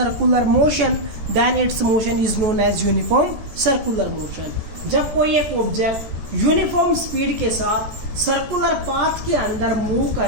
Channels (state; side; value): late; left; 13 ms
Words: motion, then its motion is known as uniform circular motion. जब कोई एक ऑब्जेक्ट यूनिफॉर्म स्पीड के साथ सर्कुलर पाथ के अंदर मूव